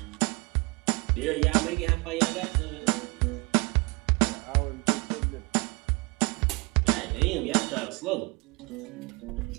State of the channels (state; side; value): quieter; left; 29.1 dB